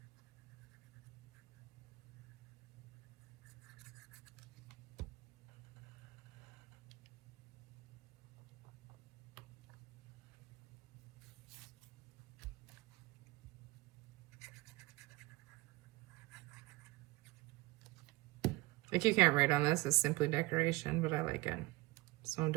Like you can't write on this, it's simply decoration, but I like it. So I'm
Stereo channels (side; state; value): left; quieter; 21.0 dB